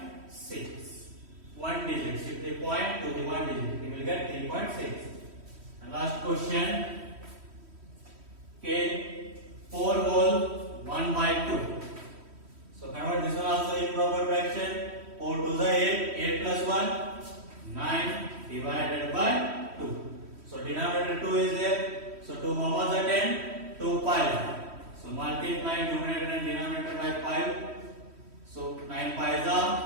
1 digit. Shift the point to the 1 digit. You will get 3.6. And last question. Okay. 4 whole 1 by 2. So convert this one also improper fraction. 4 2s are 8. 8 plus 1, 9 divided by 2. So denominator 2 is there. So 2 how much are 10? 2 5. So multiply numerator and denominator by 5. So 9 5s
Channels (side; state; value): left; late; 3.1 ms